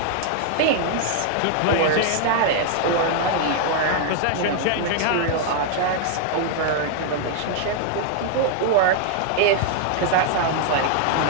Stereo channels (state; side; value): different; both; correlation 0.00